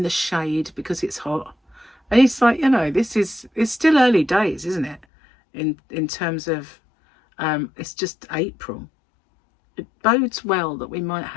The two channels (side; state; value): right; drops out; at 5.1 s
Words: the shade because it's hot. And it's like, you know, it's still early days, isn't it? In terms of, it's just April. It bodes well that we might